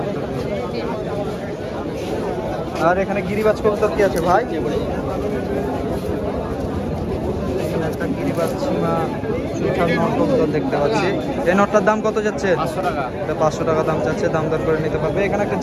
আর এখানে গিরিবাজ কবুতর কি আছে ভাই? এখানে একটা গিরিবাজ সীমা সুঠার নর কবুতর দেখতে পাচ্ছি। এই নরটার দাম কত যাচ্ছে? 500 টাকা। এটা 500 টাকা দাম চাচ্ছে। দাম দর করে নিতে পারবে। এখানে একটা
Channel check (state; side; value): identical; both; correlation 1.00